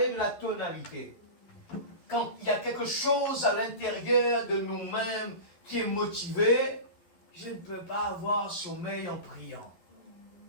de la tonalité. Quand il y a quelque chose à l'intérieur de nous-mêmes qui est motivé, je ne peux pas avoir sommeil en priant.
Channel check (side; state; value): right; late; 12 ms